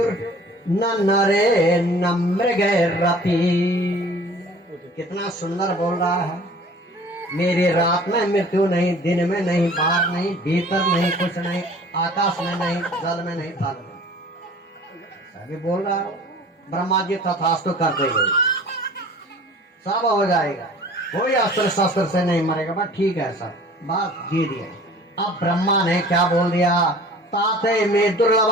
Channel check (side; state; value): both; normal; correlation 0.47